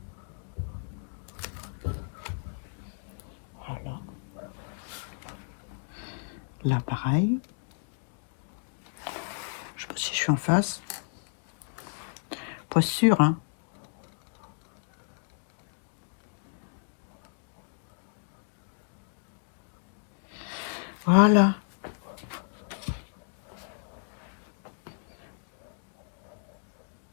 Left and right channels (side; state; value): right; silent; digital silence